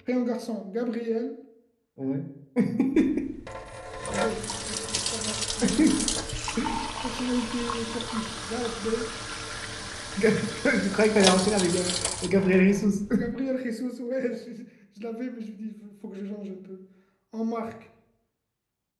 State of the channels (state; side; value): identical; both; correlation 1.00